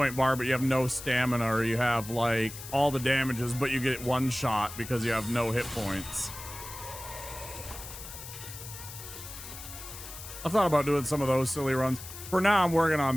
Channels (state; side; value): noise; left; hiss, 12 dB below the sound